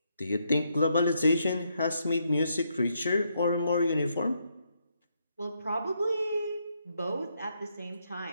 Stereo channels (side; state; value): both; inverted; correlation -0.77